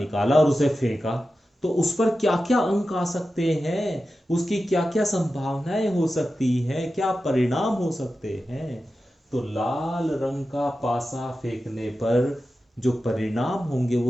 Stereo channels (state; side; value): normal; both; correlation 0.92